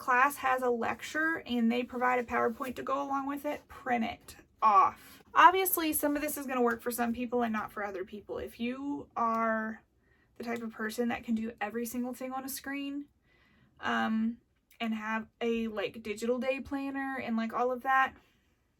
has a lecture and they provide a PowerPoint to go along with it, print it off. Obviously, some of this is going to work for some people and not for other people. If you are the type of person that can do every single thing on a screen, and have a like digital day planner and like all of that,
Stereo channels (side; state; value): both; identical; correlation 1.00